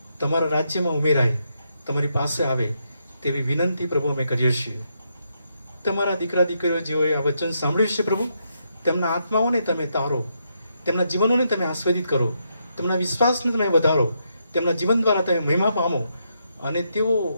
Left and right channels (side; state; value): both; inverted; correlation -0.79